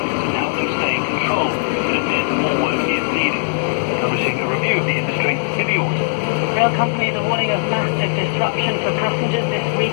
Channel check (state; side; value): silent; right; digital silence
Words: and help them stay in control, but admit more work is needed. Publishing a review of the industry in the autumn. Rail companies are warning of massive disruption for passengers this